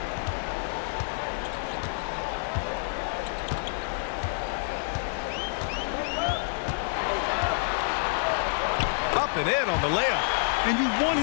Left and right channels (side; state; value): right; silent; digital silence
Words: Up and in on the layup. And you want